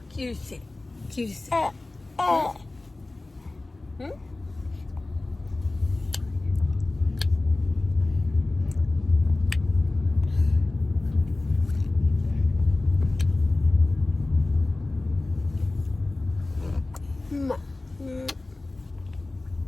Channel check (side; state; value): right; quieter; 3.0 dB